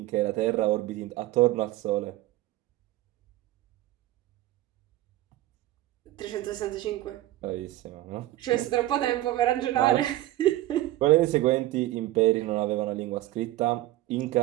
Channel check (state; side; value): quieter; left; 16.0 dB